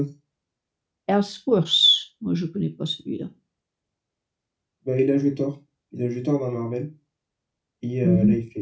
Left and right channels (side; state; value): both; identical; correlation 1.00